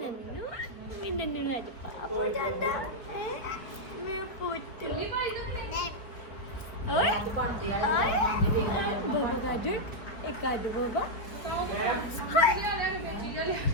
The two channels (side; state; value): right; late; 4.2 ms